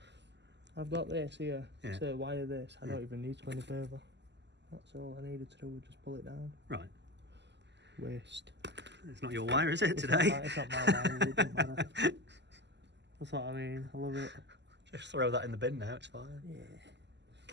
I've got this here Yeah. to wire this. I Yeah. don't even need to go any further. That's all I needed to do was just pull it down. Right. Waste. It's not your wire, is it, It's today? not my wire, it doesn't matter. That's what I mean. I love it. Just throw that in the bin now, it's fine. Yeah.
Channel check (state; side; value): late; left; 0.51 ms